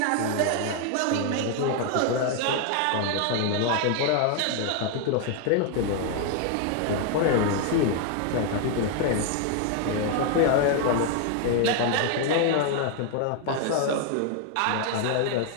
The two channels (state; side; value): different; both; correlation 0.00